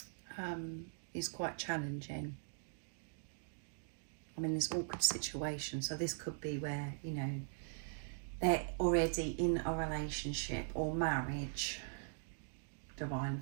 is quite challenging. I'm in this awkward situation, so this could be where, you know, they're already in a relationship or marriage, divine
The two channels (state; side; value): silent; left; digital silence